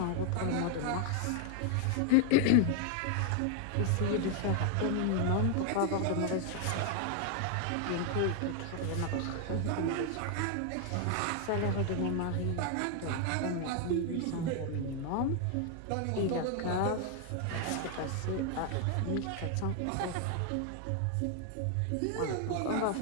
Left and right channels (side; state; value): both; different; correlation 0.00